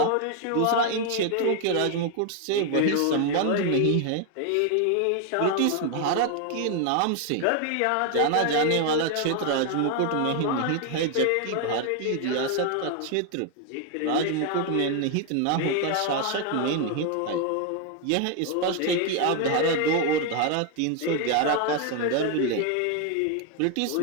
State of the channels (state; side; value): different; both; correlation 0.00